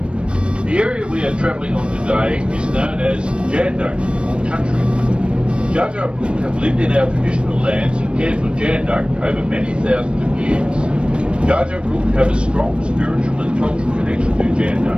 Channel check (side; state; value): left; late; 0.057 ms